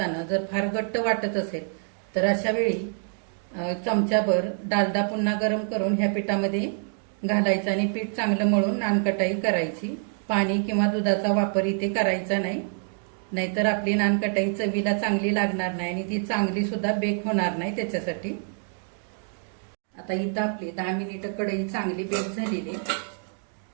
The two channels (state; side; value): silent; left; 56 dB below the other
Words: जर फार घट्ट वाटत असेल तर अशा वेळी चमच्याभर डालडा पुन्हा गरम करून ह्या पिठामध्ये घालायचं आणि पीठ चांगलं मळून नानकटाई करायची. पाणी किंवा दुधाचा वापर इथे करायचा नाही, नाहीतर आपली नानकटाई चवीला चांगली लागणार नाही आणि ती चांगली सुद्धा बेक होणार नाही त्याच्यासाठी. आता इथं आपली 10 मिनिटं कढई चांगली बेक झालेली.